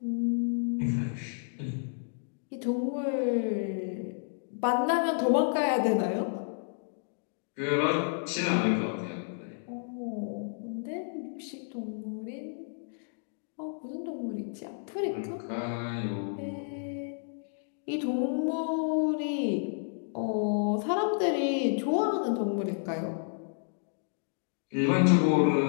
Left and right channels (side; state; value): right; silent; digital silence